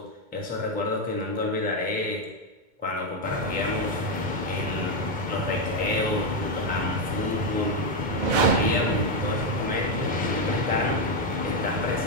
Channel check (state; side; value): late; left; 2.2 ms